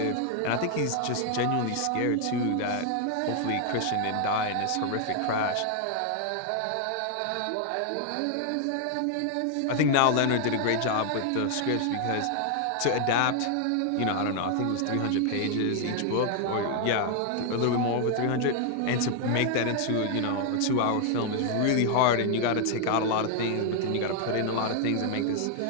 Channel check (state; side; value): different; both; correlation 0.00